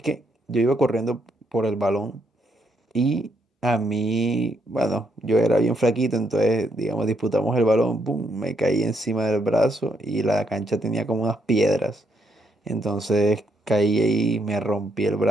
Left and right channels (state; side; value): normal; both; correlation 0.75